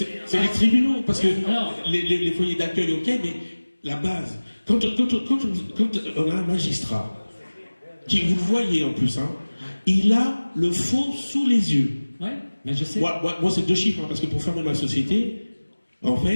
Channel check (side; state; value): both; inverted; correlation -1.00